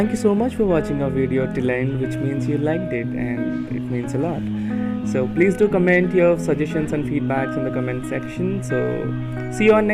you so much for watching our video till end, which means you liked it and it means a lot. So please do comment your suggestions and feedbacks in the comment section. So see you on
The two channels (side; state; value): both; identical; correlation 1.00